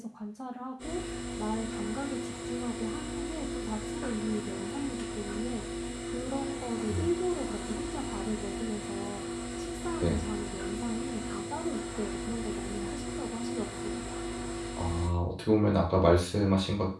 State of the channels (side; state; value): both; identical; correlation 1.00